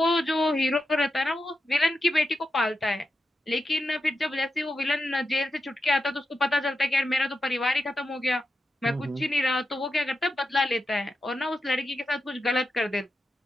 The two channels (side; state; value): both; normal; correlation 0.88